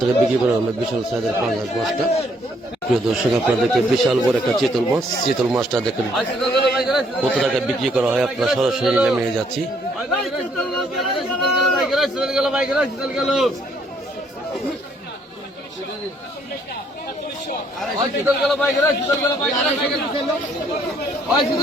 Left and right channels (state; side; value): normal; both; correlation 0.67